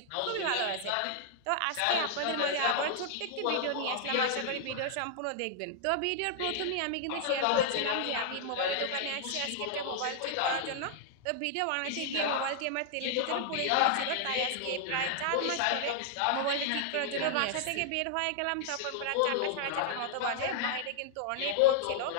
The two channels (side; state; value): both; different; correlation -0.01